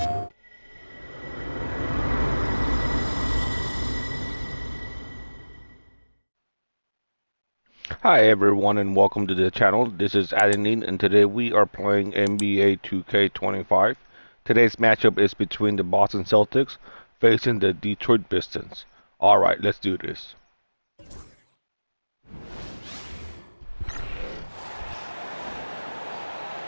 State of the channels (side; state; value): both; inverted; correlation -1.00